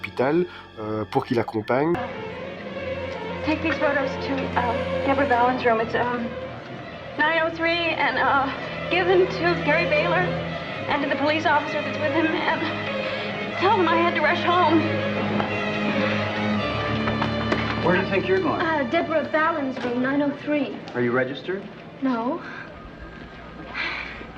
pour qu'il l'accompagne. Take these photos to Deborah Ballin's room. It's 903, and give them to Gary Baylor and to the police officer that's with him, and tell them I had to rush home. Where do you think you're going? Deborah Ballin's room, 903. Are you registered? No.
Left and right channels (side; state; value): both; identical; correlation 1.00